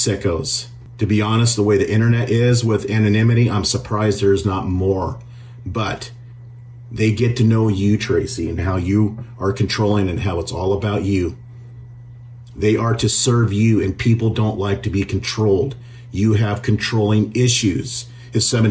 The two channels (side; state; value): both; identical; correlation 1.00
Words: To be honest, the way the internet is with anonymity, I'm surprised there's not more. But they get to know you, Tracy, and how you are controlling and how it's all about you. They are to serve you, and people don't like to be controlled. You have controlling issues. If